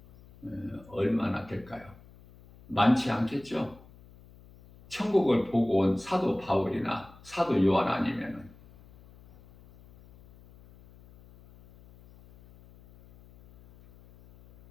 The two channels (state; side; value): noise; left; hum, 24 dB below the sound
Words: 얼마나 될까요? 많지 않겠죠? 천국을 보고 온 사도 바울이나 사도 요한 아니면은